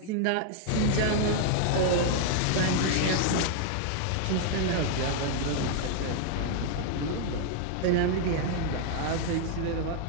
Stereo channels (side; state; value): both; different; correlation 0.00